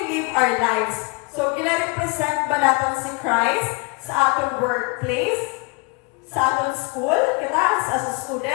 live our lives? So, gina-represent ba natin si Christ sa atong workplace, sa atong school, kita as a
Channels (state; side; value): quieter; right; 29.8 dB